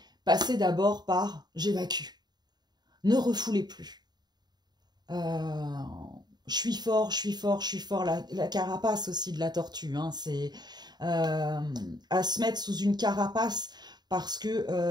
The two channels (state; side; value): late; left; 0.20 ms